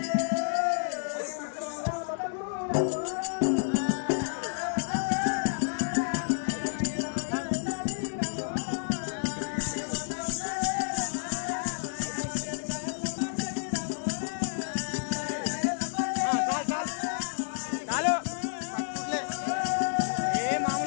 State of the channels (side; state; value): right; silent; 58 dB below the other